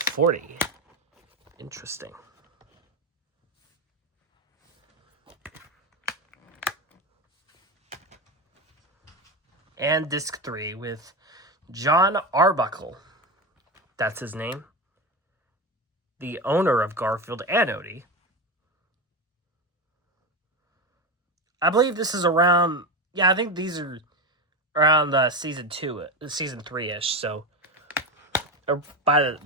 Interesting. And disc 3 with John Arbuckle. That's his name. The owner of Garfield and Odie. I believe this is around... Yeah, I think these are around season 3-ish, so... Or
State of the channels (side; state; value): both; normal; correlation 0.17